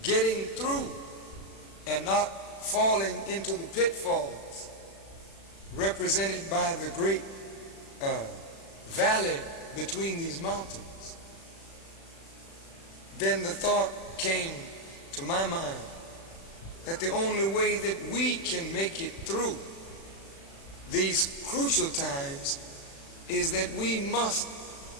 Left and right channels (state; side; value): late; right; 36 ms